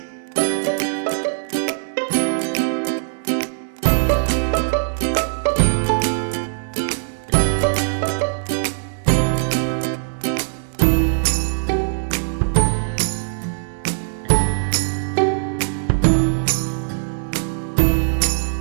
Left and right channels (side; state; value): left; silent; 65 dB below the other